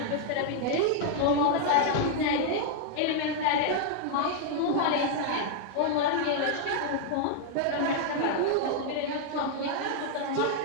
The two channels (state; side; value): different; both; correlation 0.00